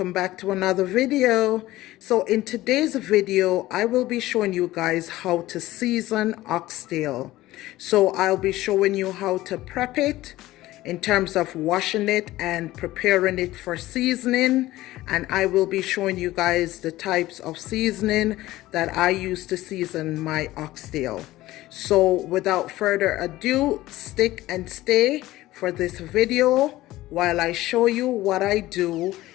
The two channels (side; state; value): right; quieter; 16.7 dB